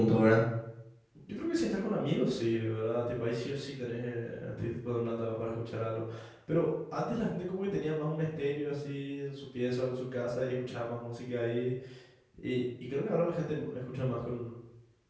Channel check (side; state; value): both; identical; correlation 1.00